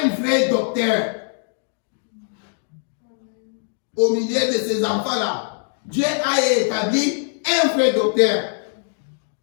vrai docteur. Au milieu de ces enfants-là, Dieu a établi un vrai docteur,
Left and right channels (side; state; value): right; silent; digital silence